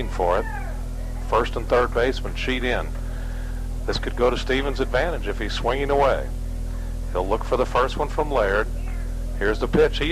for it. First and third baseman sheet in. This could go to Stevens' advantage if he's swinging away. He'll look for the first one from Laird. Here's the pitch.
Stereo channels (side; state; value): both; identical; correlation 1.00